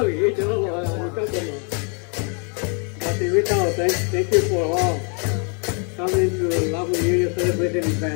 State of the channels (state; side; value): quieter; right; 38.3 dB